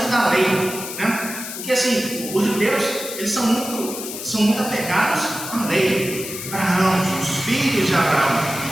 da lei, né? Porque assim, os judeus, eles são muito apegados à lei. Abraão, os filhos de Abraão.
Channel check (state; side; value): noise; left; hiss, 8 dB below the sound